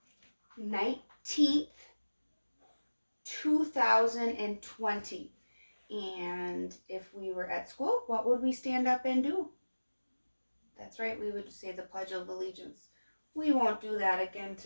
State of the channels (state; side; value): inverted; both; correlation -1.00